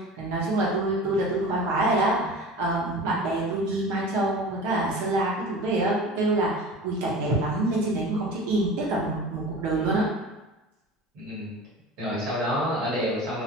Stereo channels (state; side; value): normal; both; correlation 0.36